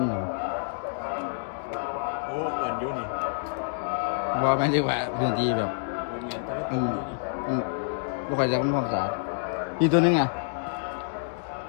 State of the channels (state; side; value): silent; right; digital silence